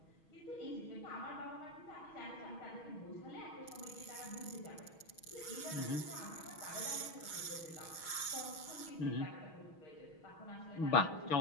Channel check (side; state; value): right; late; 6.3 ms